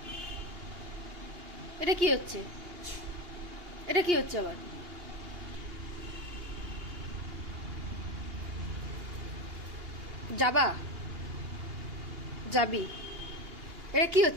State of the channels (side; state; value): left; late; 2.8 ms